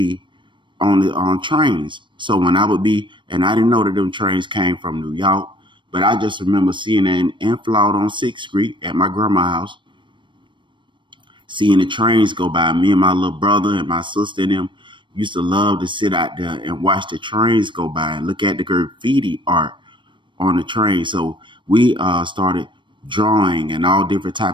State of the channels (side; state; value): left; late; 0.23 ms